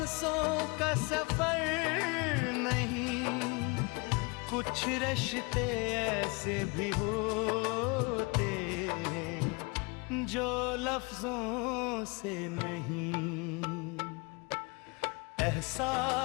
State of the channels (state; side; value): quieter; right; 28.8 dB